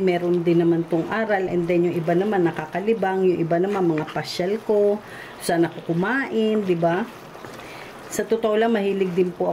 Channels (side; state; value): both; identical; correlation 1.00